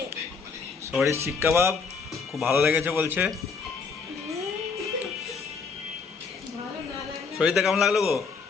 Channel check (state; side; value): quieter; right; 5.1 dB